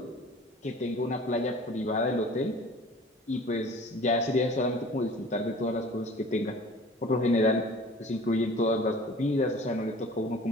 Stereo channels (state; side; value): normal; both; correlation 0.45